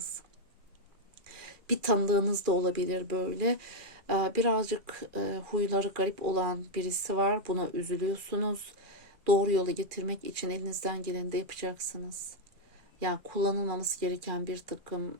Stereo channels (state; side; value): late; left; 2.4 ms